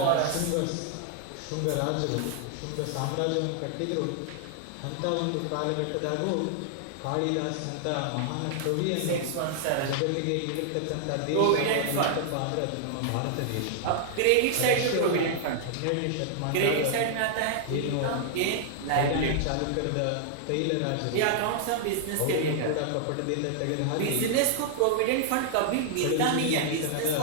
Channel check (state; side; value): different; both; correlation -0.01